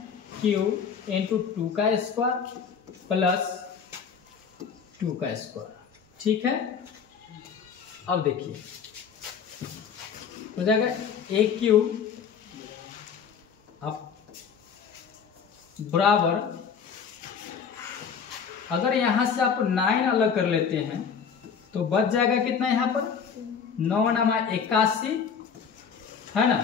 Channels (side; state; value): right; quieter; 6.7 dB